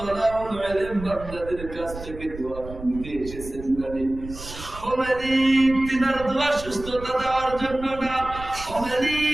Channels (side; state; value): right; noise; rumble, 13 dB below the sound